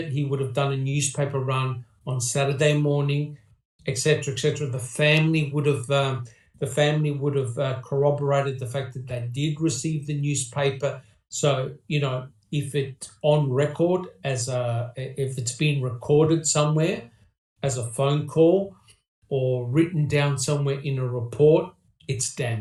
he would have done a newspaper run on Saturday morning, etc., etc. The family would have corroborated the fact that they did receive the newspaper. So if it's on record if it's been recorded somewhere as a phone call or written down somewhere in a report, it's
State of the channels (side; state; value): both; identical; correlation 1.00